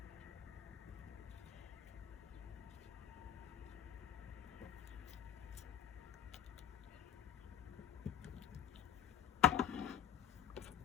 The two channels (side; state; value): right; quieter; 10.7 dB